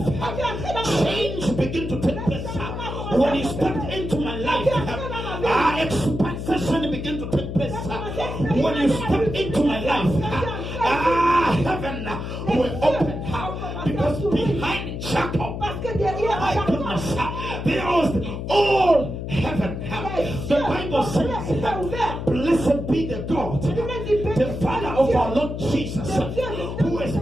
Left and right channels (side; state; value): left; noise; hum, 6 dB below the sound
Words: change began to take place. When you stepped into my life, expansion began to take place. When you stepped into my life, heaven will open. Because behind Jacob, my goodness, there was all heaven. The Bible says, blessed be the God, the Father of our Lord Jesus, who has